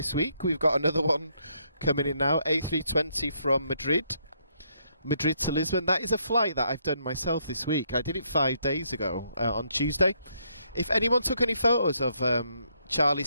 week. We've got another one coming in now, A320 from Madrid to Lisbon. That is a flight that I've done myself this week. I did it 5 days ago on Tuesday. If anyone took any photos of Charlie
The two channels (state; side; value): inverted; both; correlation -0.74